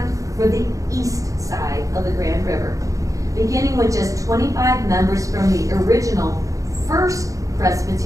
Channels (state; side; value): late; left; 0.16 ms